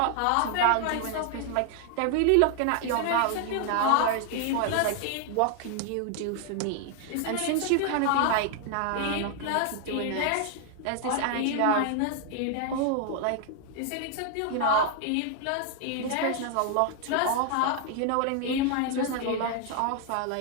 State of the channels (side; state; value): both; different; correlation 0.00